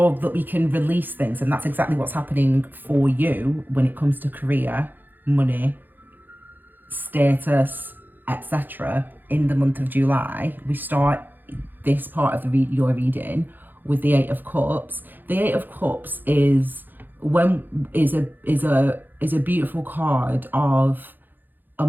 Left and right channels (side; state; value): left; late; 0.089 ms